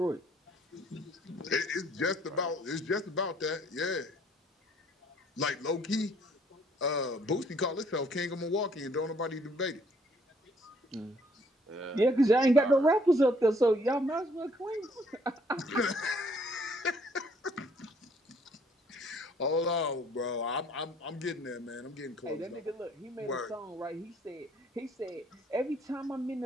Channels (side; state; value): both; normal; correlation 0.63